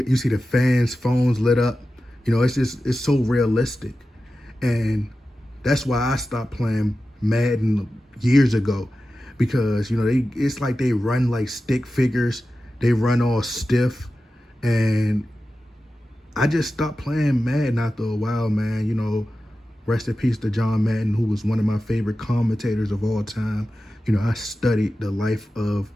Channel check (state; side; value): normal; both; correlation 0.93